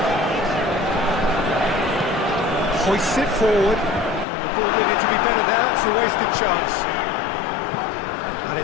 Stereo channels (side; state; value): right; drops out; at 4.2 s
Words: Hoists it forward. The ball needed to be better there. It's a wasted chance. And